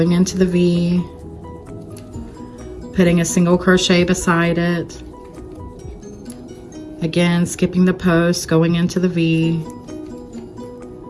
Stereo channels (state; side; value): identical; both; correlation 1.00